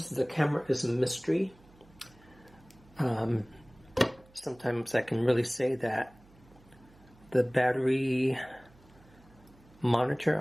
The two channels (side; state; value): right; noise; hum, 27 dB below the sound